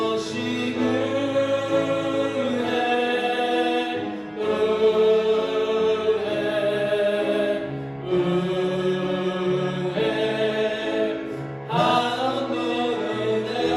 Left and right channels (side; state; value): both; identical; correlation 1.00